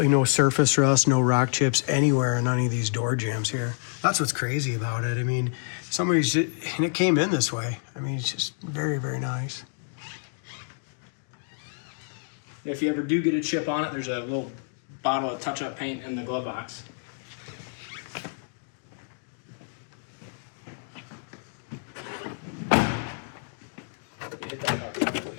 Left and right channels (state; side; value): silent; right; digital silence